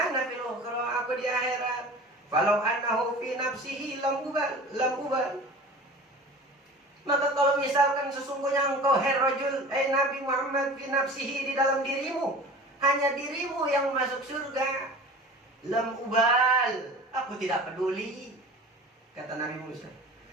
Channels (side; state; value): both; normal; correlation 0.38